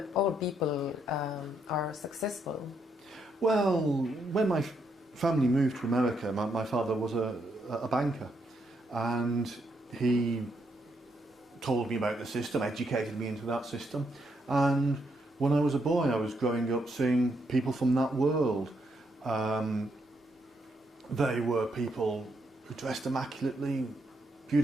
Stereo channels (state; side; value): normal; both; correlation 0.77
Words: people are successful. Well, when my family moved to America, my father was a banker, and he told me about the system, educated me into that system, and when I was a boy I was growing up seeing people from that world. They were people who dressed immaculately,